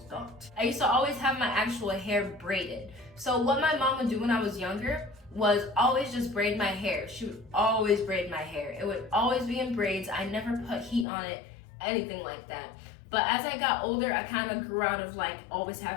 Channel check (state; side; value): drops out; right; at 11.1 s